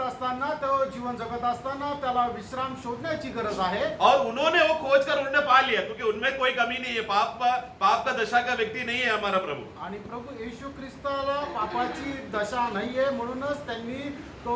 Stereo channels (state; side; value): identical; both; correlation 1.00